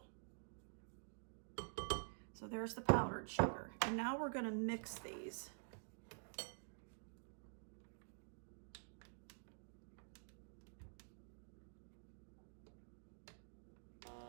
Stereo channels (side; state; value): left; silent; digital silence